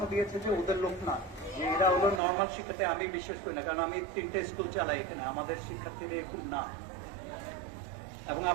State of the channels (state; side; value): drops out; left; at 2.2 s